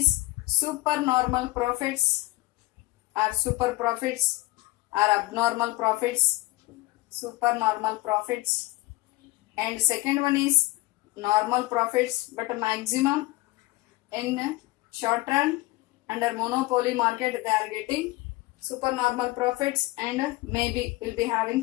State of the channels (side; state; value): right; quieter; 20.2 dB